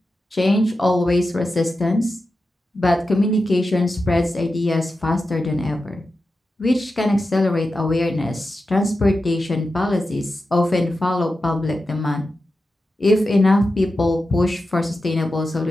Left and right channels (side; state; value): both; normal; correlation 0.91